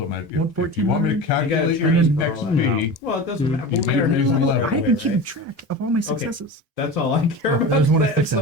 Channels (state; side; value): normal; both; correlation 0.30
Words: matter. If you 114, want me to calculate your train for all that. XP, Well, it doesn't matter. You We'll get our made hit a points level. right I away, haven't keeping right? track of all my successes. That's all I care I about. just want to That's fix